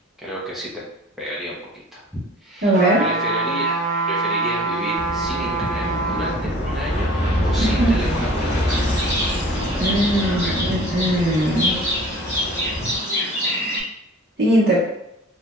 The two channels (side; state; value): both; normal; correlation 0.47